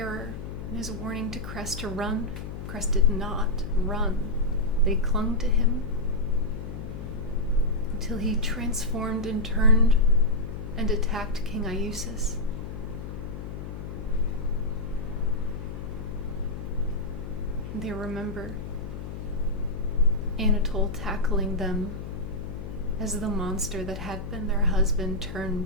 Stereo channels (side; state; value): left; noise; hum, 8 dB below the sound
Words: and his warning to Cress to run. Cress did not run. They clung to him until he transformed and turned and attacked King Iusis. They remember Anatole tackling them as the monster that had been their husband